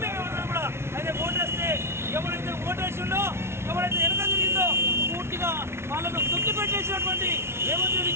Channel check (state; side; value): late; left; 0.12 ms